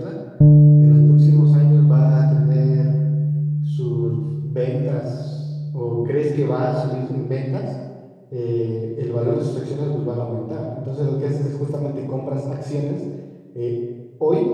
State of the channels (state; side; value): identical; both; correlation 1.00